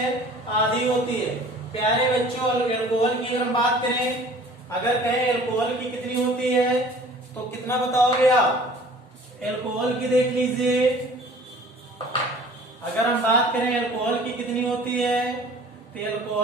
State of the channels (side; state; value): both; normal; correlation 0.48